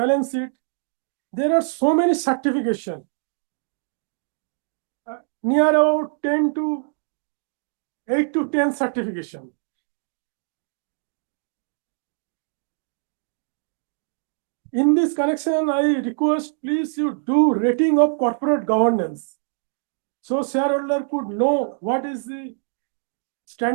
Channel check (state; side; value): silent; left; digital silence